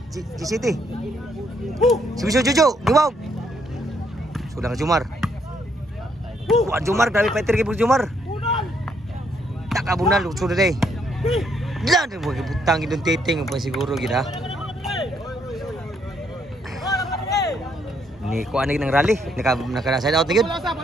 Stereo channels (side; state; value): both; normal; correlation 0.72